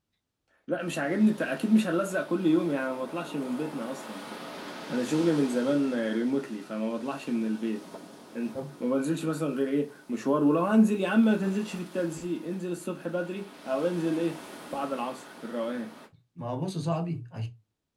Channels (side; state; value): both; identical; correlation 1.00